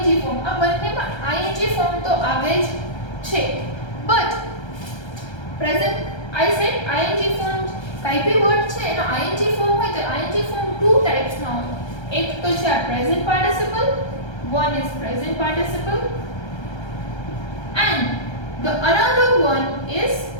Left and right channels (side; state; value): right; late; 1.3 ms